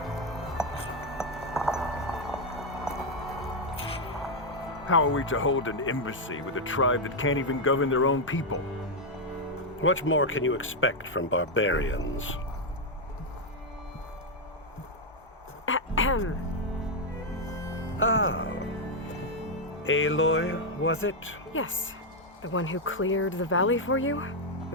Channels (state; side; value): normal; both; correlation 0.01